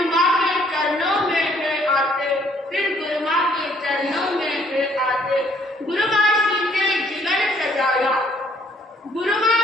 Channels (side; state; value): both; normal; correlation 0.63